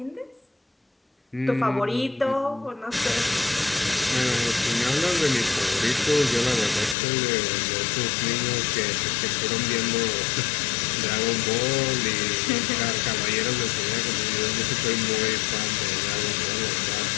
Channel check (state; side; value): drops out; right; at 7.0 s